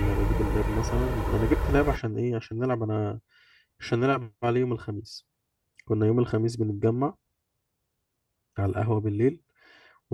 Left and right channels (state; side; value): identical; both; correlation 1.00